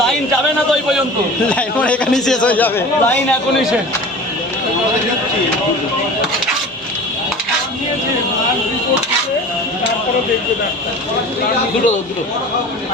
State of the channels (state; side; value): normal; both; correlation 0.38